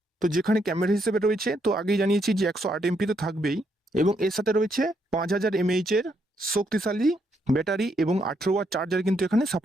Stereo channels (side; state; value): both; normal; correlation 0.76